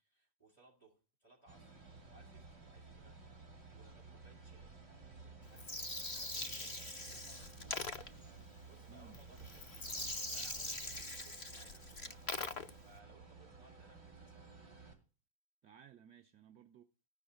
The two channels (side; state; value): right; late; 3.1 ms